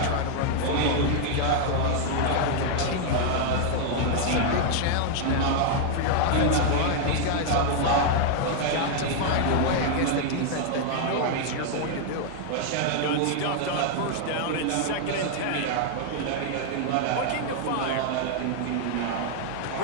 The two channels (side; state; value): both; different; correlation 0.00